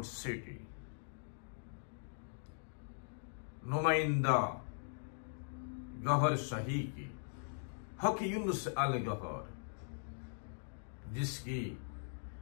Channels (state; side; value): silent; right; digital silence